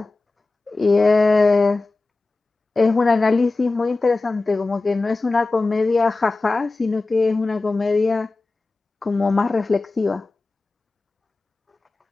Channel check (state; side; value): quieter; right; 3.4 dB